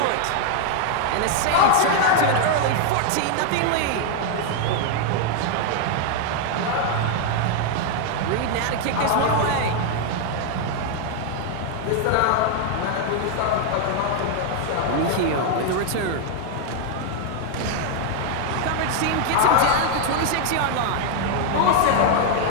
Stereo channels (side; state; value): both; different; correlation 0.00